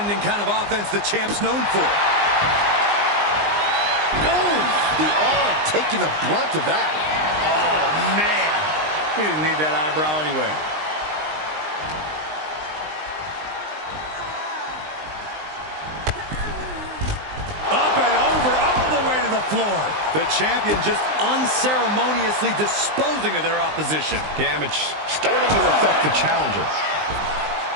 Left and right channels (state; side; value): late; left; 19 ms